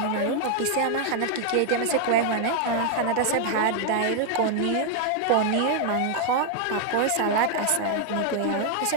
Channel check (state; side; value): different; both; correlation 0.00